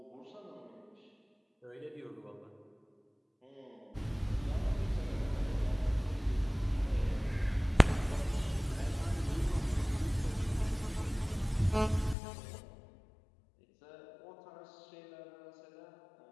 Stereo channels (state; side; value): drops out; right; at 12.2 s